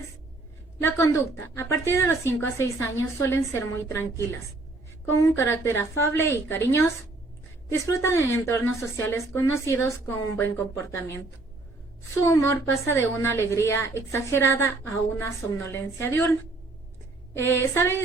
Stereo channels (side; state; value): left; quieter; 3.1 dB